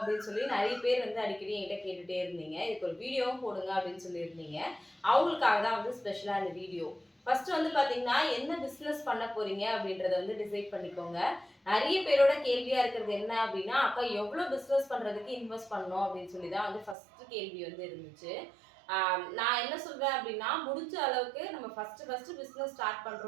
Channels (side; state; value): left; drops out; at 16.9 s